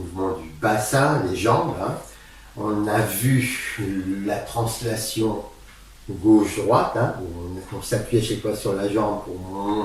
du bassin, les jambes. On a vu la translation gauche-droite, où on s'appuie à chaque fois sur la jambe pour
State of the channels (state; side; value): identical; both; correlation 1.00